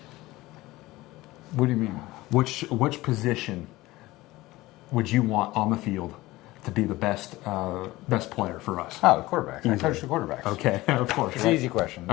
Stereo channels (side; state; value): right; quieter; 18.8 dB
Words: What do you mean? Which position would you want on the field to be the best player for us? Oh, the quarterback. I coach the quarterbacks. Okay, of course. It's right? an easy question.